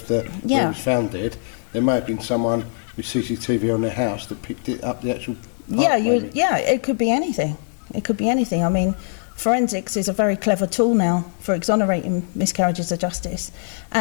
where it was found dead, there may have been someone with CCTV on their house that picked it up, the actual part, it could be anything. It could be anything. I mean, forensics is a very clever tool now for exonerating miscarriages of justice.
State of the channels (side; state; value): right; silent; digital silence